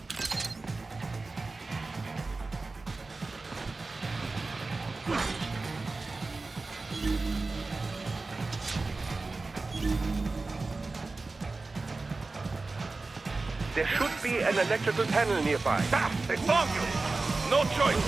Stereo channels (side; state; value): left; quieter; 3.6 dB